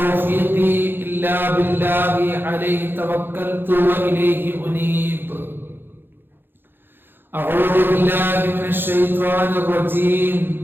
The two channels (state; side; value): late; left; 0.10 ms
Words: إلا بالله عليه توكلت وإليه أنيب. أعوذ بالله من الشيطان الرجيم.